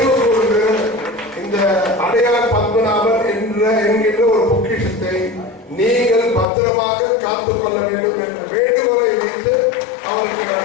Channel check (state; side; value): drops out; right; at 6.5 s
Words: கூர்ந்து இந்த அடையார் பத்மநாபன் என்கின்ற ஒரு பொக்கிஷத்தை நீங்கள் பத்திரமாக காத்துக் கொள்ள வேண்டும் என்ற வேண்டுகோளை வைத்து அவருக்கு